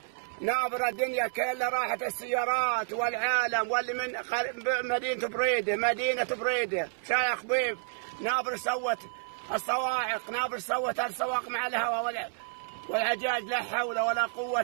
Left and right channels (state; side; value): silent; left; 58 dB below the other